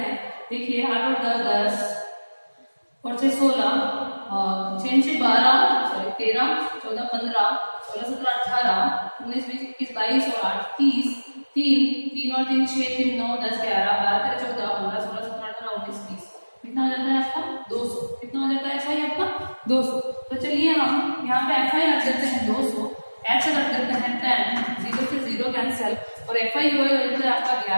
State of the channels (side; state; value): both; inverted; correlation -1.00